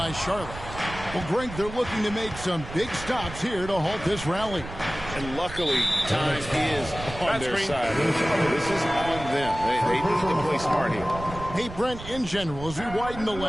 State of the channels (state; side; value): noise; right; rumble, 12 dB below the sound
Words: Charlotte. Well, Greg, they're looking to make some big stops here to halt this rally. And luckily, time is on their side. This is on them. They need to play smart here. Hey, Brent, in general, as we widen the